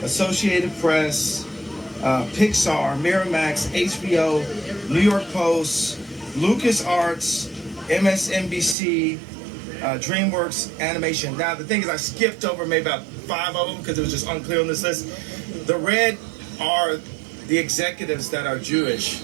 Associated Press, Pixar, Miramax, HBO, New York Post, LucasArts, MSNBC, DreamWorks Animation. Now, the thing is, I skipped over maybe about 5 of them because it was just unclear on this list. The red are the executives that are Jewish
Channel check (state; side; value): drops out; left; at 8.8 s